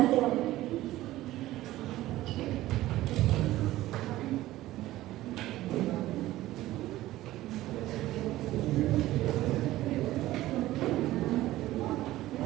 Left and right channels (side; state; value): left; quieter; 15.9 dB